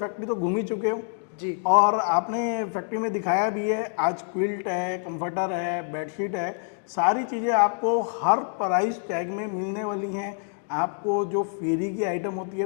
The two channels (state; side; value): silent; right; 57 dB below the other